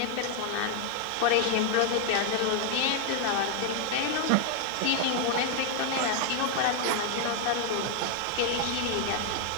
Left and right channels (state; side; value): different; both; correlation 0.00